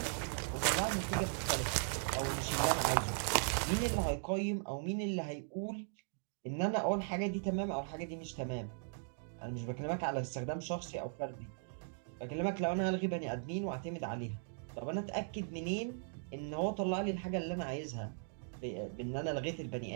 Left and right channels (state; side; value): silent; left; digital silence